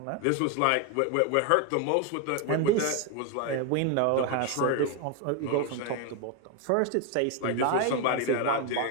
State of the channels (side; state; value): both; different; correlation 0.01